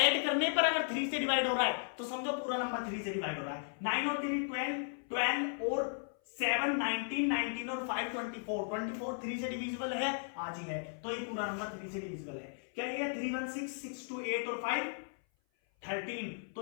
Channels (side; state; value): right; silent; 54 dB below the other